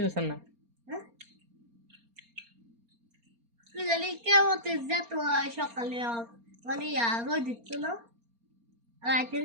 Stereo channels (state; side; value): late; left; 4.3 ms